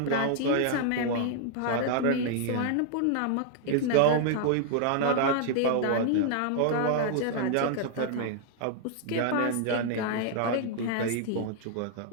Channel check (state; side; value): different; both; correlation 0.00